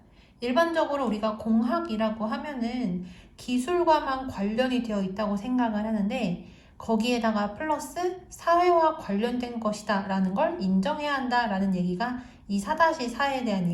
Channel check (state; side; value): identical; both; correlation 1.00